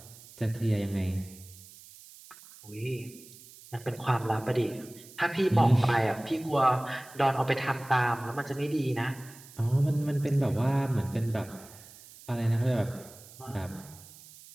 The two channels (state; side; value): noise; right; hiss, 20 dB below the sound